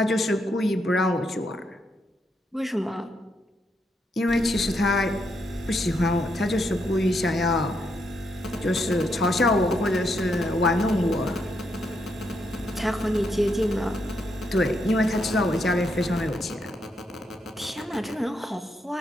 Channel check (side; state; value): both; normal; correlation 0.79